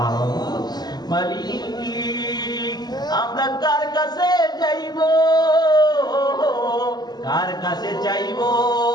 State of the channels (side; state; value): right; late; 0.20 ms